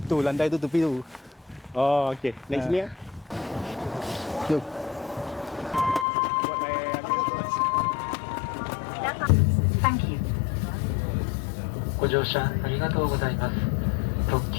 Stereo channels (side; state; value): right; drops out; at 6.1 s